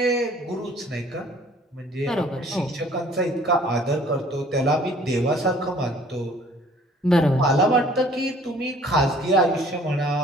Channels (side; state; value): both; normal; correlation 0.54